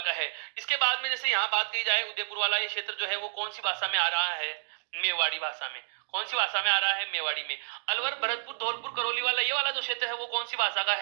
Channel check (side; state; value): left; silent; digital silence